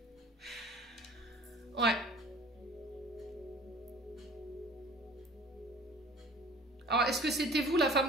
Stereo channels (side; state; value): both; normal; correlation 0.47